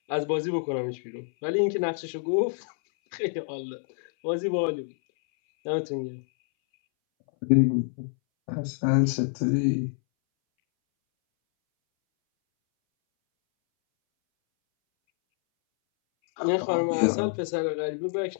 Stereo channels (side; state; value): right; silent; 60 dB below the other